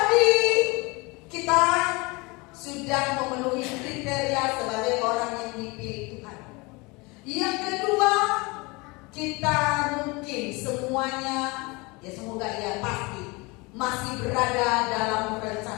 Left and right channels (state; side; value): quieter; right; 25.9 dB